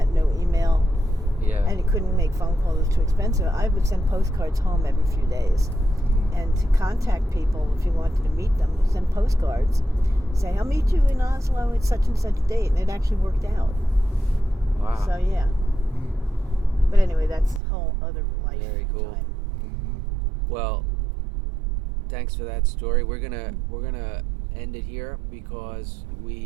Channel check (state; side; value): drops out; left; at 17.6 s